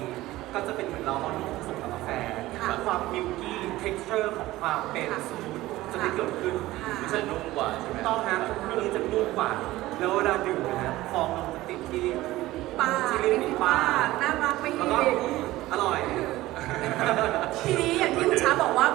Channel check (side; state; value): left; quieter; 17.2 dB